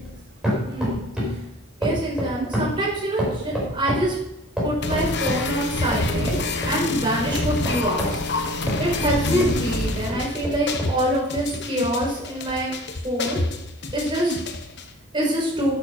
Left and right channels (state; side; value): normal; both; correlation 0.47